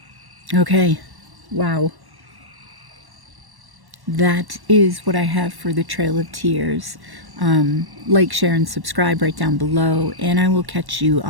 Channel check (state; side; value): late; left; 1.1 ms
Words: Okay, wow. That is what I have for the Trail of Tears. Like, share, and subscribe right down below, and I will catch you